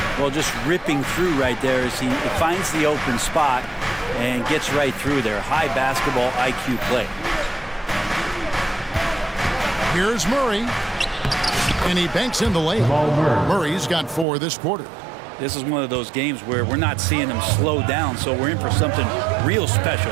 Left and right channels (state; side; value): drops out; left; at 14.2 s